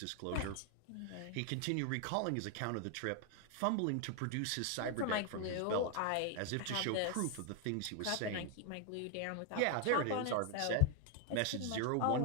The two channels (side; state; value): both; different; correlation 0.01